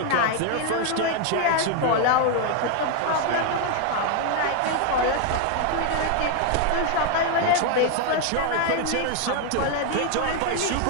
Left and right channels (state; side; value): different; both; correlation 0.01